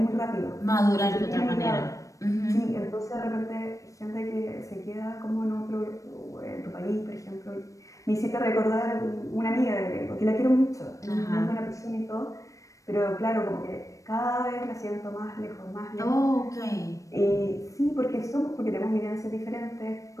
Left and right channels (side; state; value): right; late; 0.16 ms